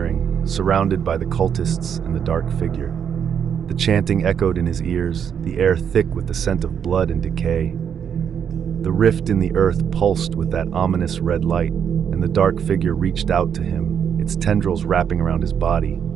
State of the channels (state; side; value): quieter; left; 8.0 dB